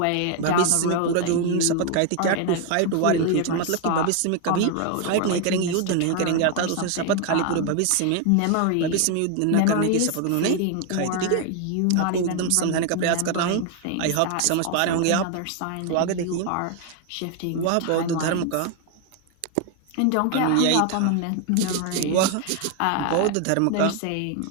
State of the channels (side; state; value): both; different; correlation 0.01